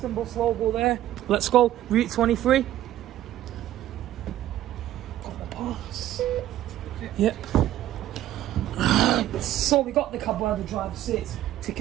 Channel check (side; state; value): left; quieter; 13.3 dB